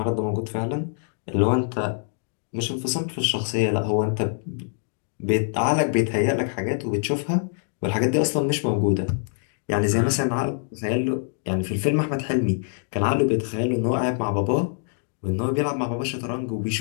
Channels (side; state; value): right; silent; 59 dB below the other